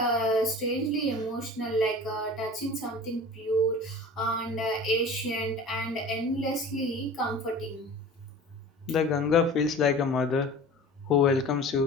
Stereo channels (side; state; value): both; normal; correlation 0.39